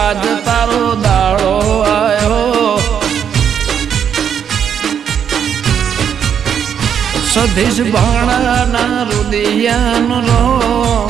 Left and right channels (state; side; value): quieter; left; 8.2 dB